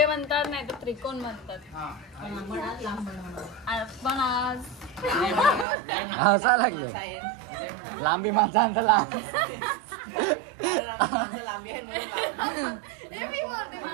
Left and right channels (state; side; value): drops out; left; at 5.7 s